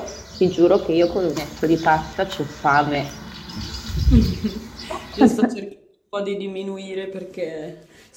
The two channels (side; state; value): both; identical; correlation 1.00